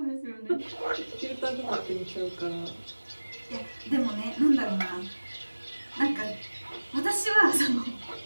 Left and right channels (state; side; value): inverted; both; correlation -1.00